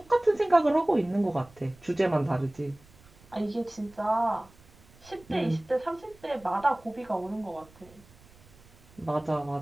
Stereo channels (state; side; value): noise; right; rumble, 26 dB below the sound